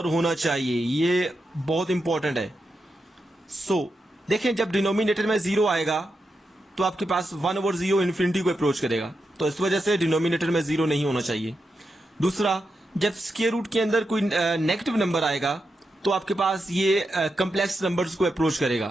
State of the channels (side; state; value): both; normal; correlation 0.87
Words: होना चाहिए। ये बहुत इंपॉर्टेंट है। सो देखें, जब डिनोमिनेटर में 0 आएगा तो आपके पास 1/0 इन्फिनिटी को अप्रोच करेगा, तो इस वजह से डिनोमिनेटर में 0 नहीं होना चाहिए। दूसरा, जब स्क्वायर रूट के अंदर कोई नेगेटिव नंबर आएगा तो आपके पास ये कम्प्लेक्स नंबर्स को अप्रोच